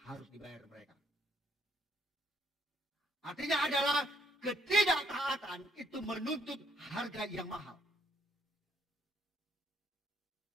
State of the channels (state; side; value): normal; both; correlation 0.71